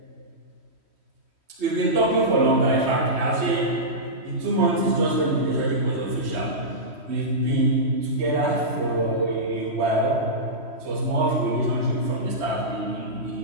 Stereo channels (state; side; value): late; left; 3.1 ms